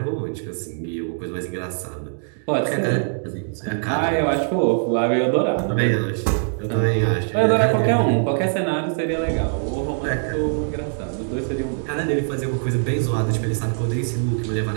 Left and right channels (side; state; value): left; silent; digital silence